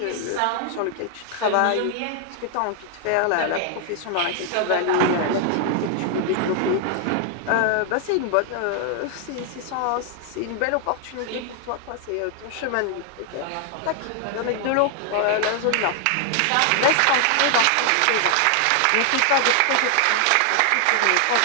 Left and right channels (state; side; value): different; both; correlation 0.00